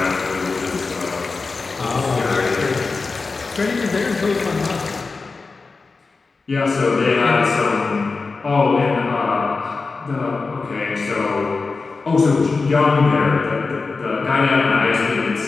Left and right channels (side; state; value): right; quieter; 4.2 dB